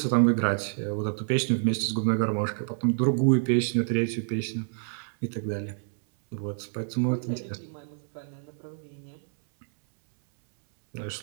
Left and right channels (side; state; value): left; silent; 60 dB below the other